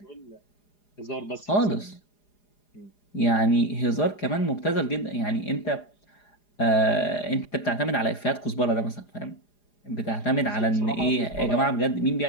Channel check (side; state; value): right; late; 4.9 ms